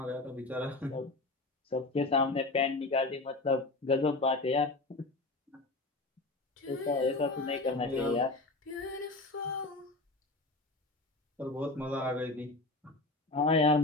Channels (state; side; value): quieter; right; 3.1 dB